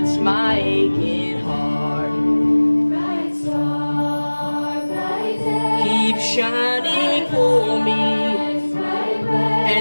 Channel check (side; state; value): both; inverted; correlation -1.00